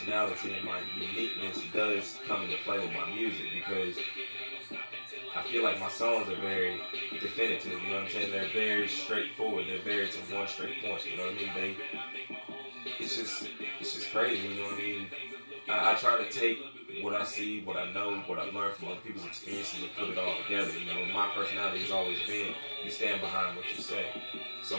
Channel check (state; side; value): inverted; both; correlation -1.00